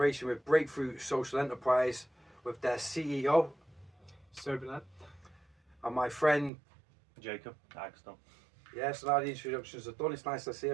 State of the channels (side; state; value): left; drops out; at 6.5 s